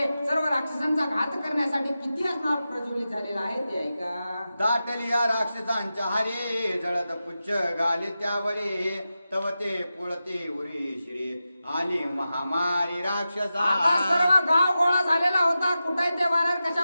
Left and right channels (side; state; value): both; inverted; correlation -0.92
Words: सर्व राक्षसांचा घात करण्यासाठी किती असणार प्रज्वलित झालेला आहे ते ऐका. दाटली या राक्षसांच्या हरे जळत पुच्छ घाले त्यावरे तव ते पुळते उरी श्री आली महामारी राक्षसा. आता सर्व गाव गोळा झालेला होता, कुठे ते वानर कशा